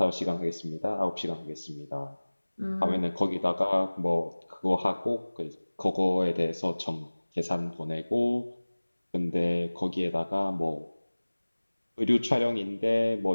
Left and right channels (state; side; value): inverted; both; correlation -1.00